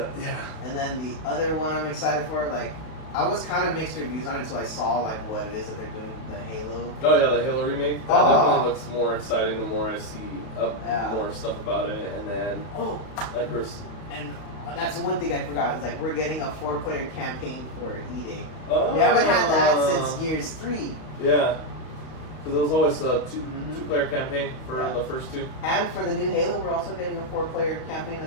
yeah. And then the other one I'm excited for, like, I was kind of mixed reviews on it until I saw like what it is that they're doing, the Halo. Oh yeah, the Halo remake. That Oh. definitely looks more exciting the more I see more stuff about it, and then like and that's the one thing I forgot. It's like we're getting a 4-player campaign for E-Day. Oh. We haven't had that since Gears 3. Yeah, because it was always a two-player campaign for the first two. And for the new Halo, we're also getting a 4-player campaign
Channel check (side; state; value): right; late; 31 ms